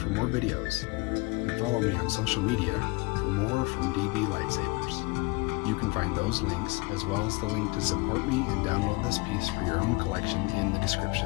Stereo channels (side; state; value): right; quieter; 25.4 dB